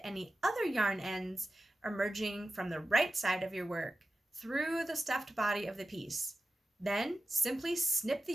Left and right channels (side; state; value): both; normal; correlation 0.91